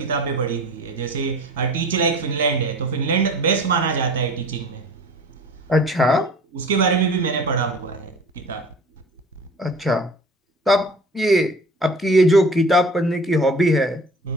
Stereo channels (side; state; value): both; normal; correlation 0.43